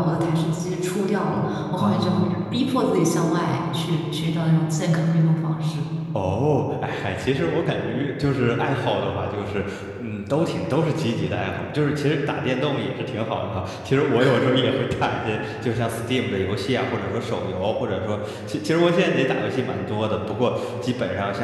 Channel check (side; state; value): both; identical; correlation 1.00